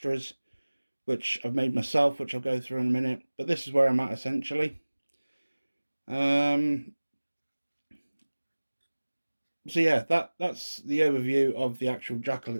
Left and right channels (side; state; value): both; inverted; correlation -1.00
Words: which I've made myself, which I'll go through in a minute. But this is where I'm at essentially. So yeah, that's the overview of the actual Jackal